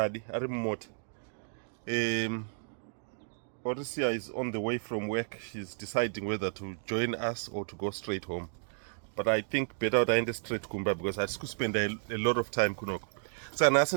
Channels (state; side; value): silent; left; digital silence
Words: ari mumota. Orisia is on the way from work. She's deciding whether to join us or to go straight home. But I think better to end straight kumba because I could spend a lot of time kunoko. So now I